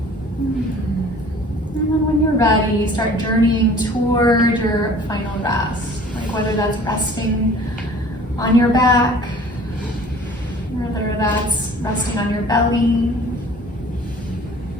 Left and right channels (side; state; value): both; normal; correlation 0.49